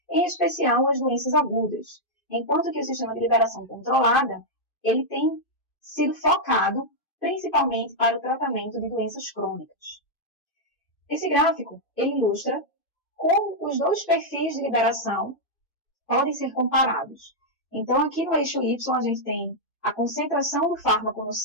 em especial as doenças agudas, enquanto que o sistema de liberação controlada ele tem sido focado principalmente para o tratamento de doenças crônicas. Esse gráfico ele ilustra como os dois perfis de liberação podem ser comparados. Então, aqui no eixo Y, a gente tem a concentração do fármaco no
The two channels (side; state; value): right; late; 2.5 ms